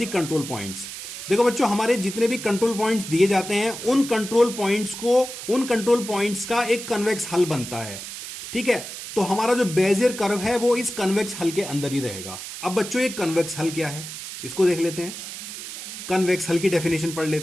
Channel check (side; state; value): right; noise; hiss, 10 dB below the sound